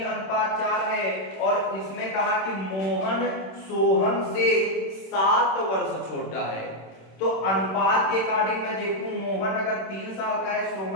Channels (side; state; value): right; late; 26 ms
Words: है और इसमें कहा कि मोहन सोहन से 7 वर्ष छोटा है। तो अनुपात के अकॉर्डिंग मैं देखूं, मोहन अगर 3 साल का है,